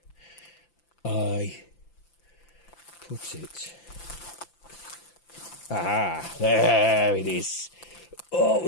I put it? Ah, there it is.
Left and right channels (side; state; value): right; late; 5.9 ms